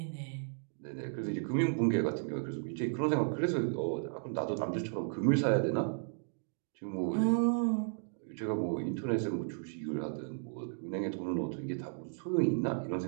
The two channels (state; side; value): silent; left; digital silence